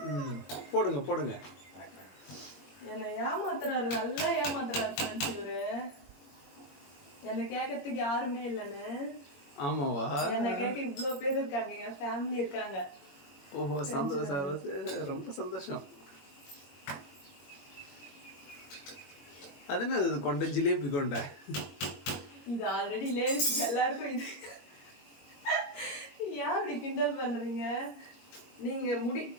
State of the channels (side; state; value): right; late; 21 ms